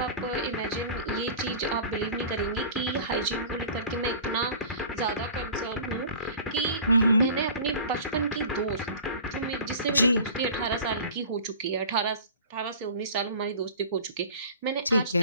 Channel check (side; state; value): both; inverted; correlation -0.42